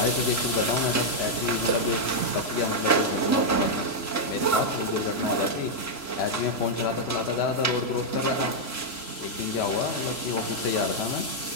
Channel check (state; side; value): late; right; 3.0 ms